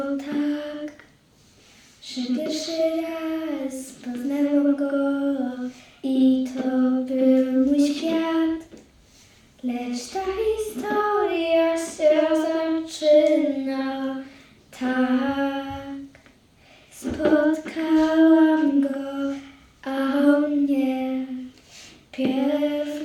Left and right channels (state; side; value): identical; both; correlation 1.00